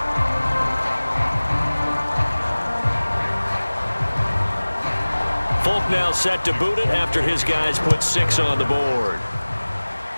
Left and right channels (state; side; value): inverted; both; correlation -1.00